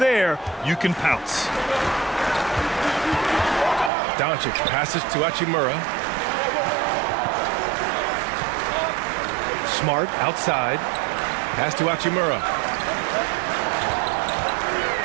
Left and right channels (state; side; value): drops out; left; at 3.9 s